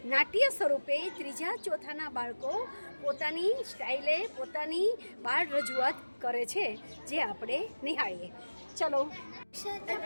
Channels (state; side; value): inverted; both; correlation -1.00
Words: નાટ્ય સ્વરૂપે ત્રીજા ચોથાના બાળકો પોતાની સ્ટાઇલે પોતાની બાળ રજૂઆત કરે છે, જે આપણે નિહાળીએ. ચલો.